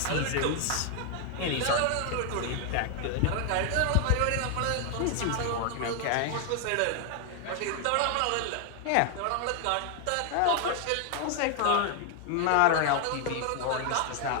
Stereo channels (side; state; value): both; different; correlation 0.00